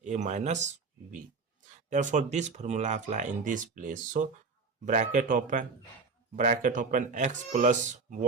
a minus b. Therefore, this formula apply in this place. So bracket open x plus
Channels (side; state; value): left; quieter; 4.5 dB